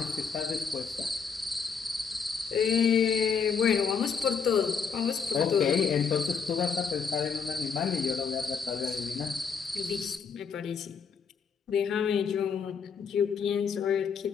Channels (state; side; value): quieter; right; 6.2 dB